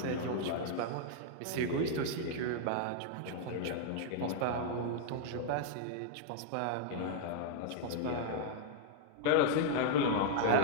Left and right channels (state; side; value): different; both; correlation 0.00